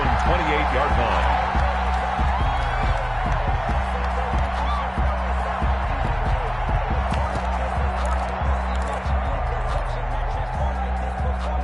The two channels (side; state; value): both; identical; correlation 1.00